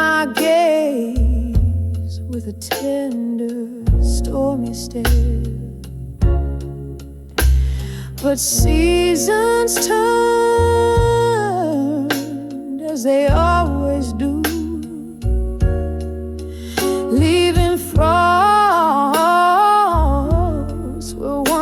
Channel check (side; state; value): both; identical; correlation 1.00